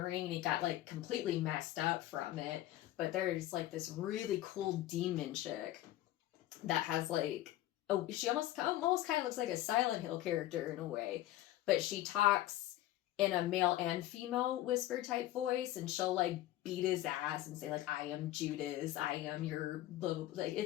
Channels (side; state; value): right; quieter; 14.7 dB